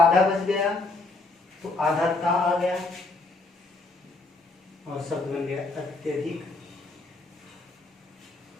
बच गया तो आधा ता आ गया और शब्द बन गया अत्यधिक।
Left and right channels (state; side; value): quieter; right; 3.2 dB